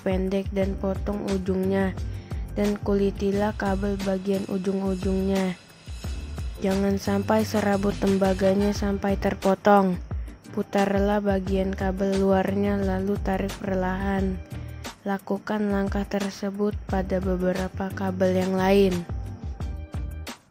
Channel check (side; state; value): both; identical; correlation 1.00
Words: pendek dan potong ujungnya, dan kulitilah kabel bagian ujung-ujungnya. Jangan sampai serabut tembaganya sampai terpotong. Putarlah bagian kabel luarnya lalu tarik perlahan. Lakukan langkah tersebut pada beberapa kabel yang lain.